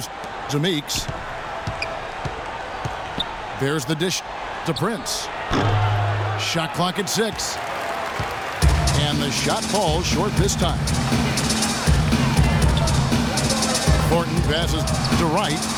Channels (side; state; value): both; identical; correlation 1.00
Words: to Meeks. There's the dish to Prince. Shot clock at 6. And the shot falls short this time. Thornton passes to Wright.